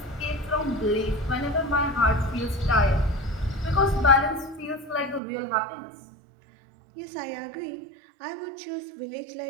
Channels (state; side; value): drops out; left; at 5.2 s